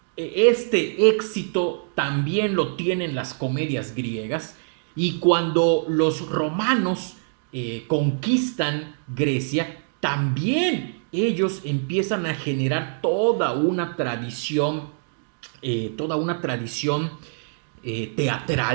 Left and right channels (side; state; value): left; silent; digital silence